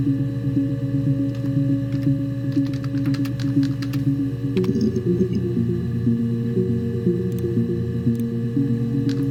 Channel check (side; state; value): both; identical; correlation 1.00